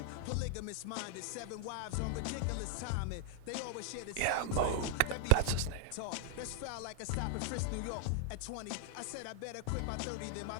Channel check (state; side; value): different; both; correlation 0.00